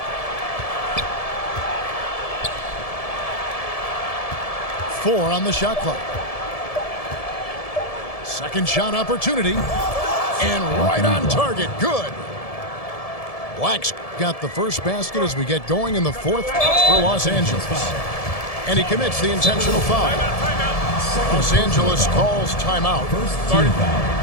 Four on the shot clock. Second shot opportunity. And right on target. Good. Black's got the first basket as we get going in the fourth for Los Angeles. And he commits the intentional foul. Los Angeles calls timeout. First team foul.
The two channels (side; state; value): right; late; 1.7 ms